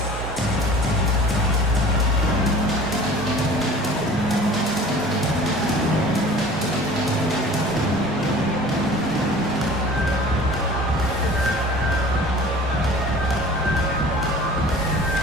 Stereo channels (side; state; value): both; normal; correlation 0.44